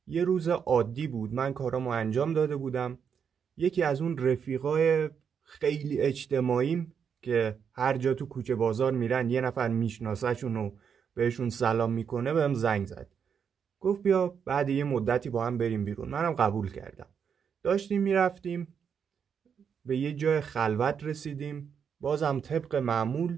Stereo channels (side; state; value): left; quieter; 7.1 dB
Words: یه روز عادی بود، من کارامو انجام داده بودم. یکی از اون رفیقای خیلی اجتماعیم که هر جا تو کوچه بازار میرن یه نفر میشناسهشون و بهشون سلام میکنه بهم زنگ زد. گفت بیا بعد یه مدتی با هم بریم بیرون. منم قبول کردم. داشتیم میرفتیم، به یه جای خلوت رسیدیم. بازم طبق معمول